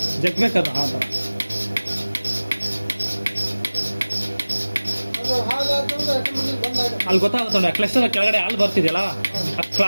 ಜಗ್ಬೇಕದು ಆ ಥರ. ಅಲ್ಲಿ ಗೊತ್ತಾಗುತ್ತೆ ನೋಡಿ, ಕ್ಲಸ್ಟರ್ ಕೆಳಗಡೆ ಹಾಲು ಬರ್ತಿದೆಯಲ್ಲ, ಆ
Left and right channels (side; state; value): both; inverted; correlation -1.00